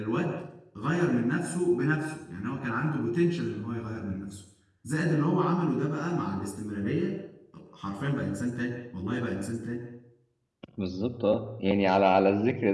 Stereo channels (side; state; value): both; identical; correlation 1.00